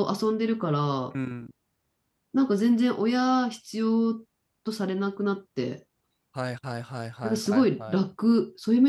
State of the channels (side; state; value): both; identical; correlation 1.00